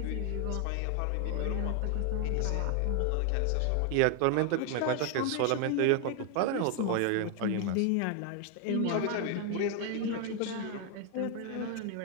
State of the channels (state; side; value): different; both; correlation 0.01